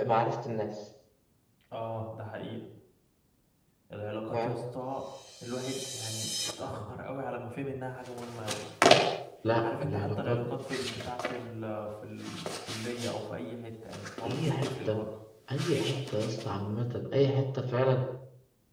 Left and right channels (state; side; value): identical; both; correlation 1.00